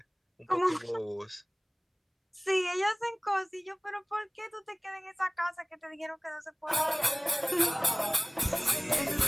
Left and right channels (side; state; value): both; identical; correlation 1.00